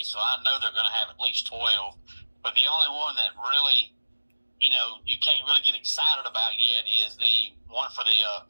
so I know they're going to have at least 12. But the only one that really, you can't really get excited about yet is the one for the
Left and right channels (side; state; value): both; inverted; correlation -1.00